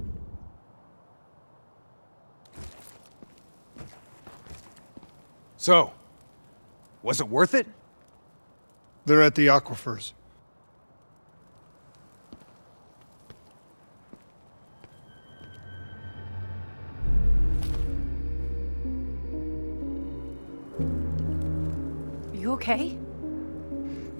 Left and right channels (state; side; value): inverted; both; correlation -1.00